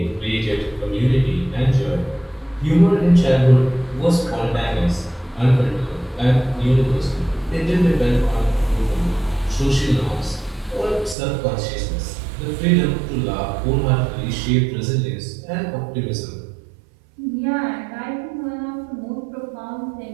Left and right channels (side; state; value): left; drops out; at 11.2 s